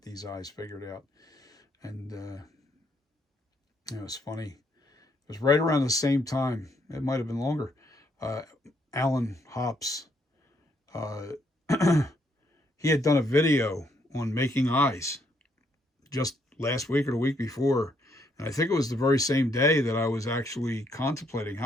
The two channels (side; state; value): both; normal; correlation 0.72